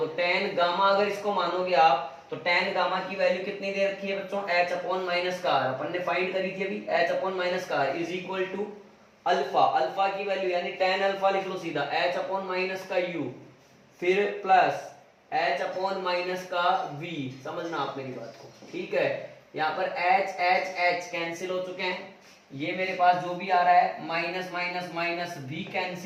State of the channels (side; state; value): both; identical; correlation 1.00